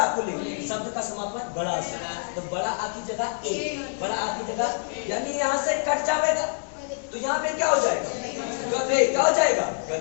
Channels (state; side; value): silent; right; digital silence